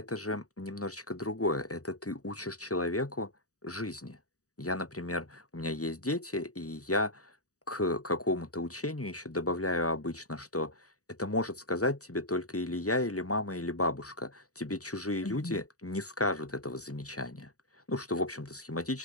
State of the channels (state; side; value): late; right; 0.66 ms